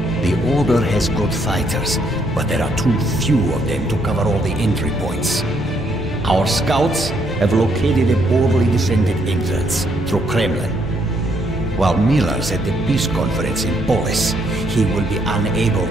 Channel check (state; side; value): normal; both; correlation 0.72